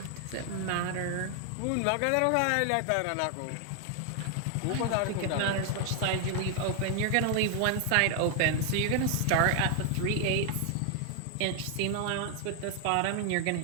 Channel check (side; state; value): both; different; correlation 0.00